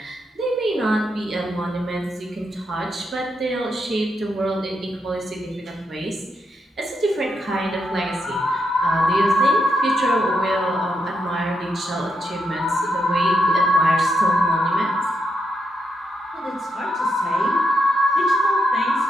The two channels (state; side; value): normal; both; correlation 0.82